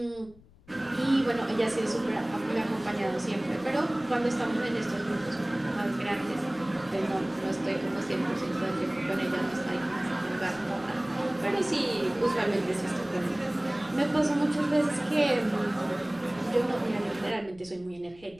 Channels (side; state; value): left; noise; rumble, 25 dB below the sound